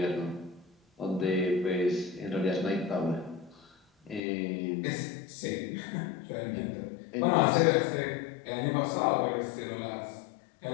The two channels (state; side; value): drops out; right; at 4.2 s